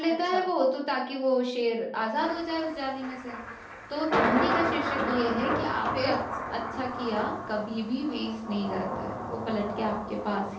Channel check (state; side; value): identical; both; correlation 1.00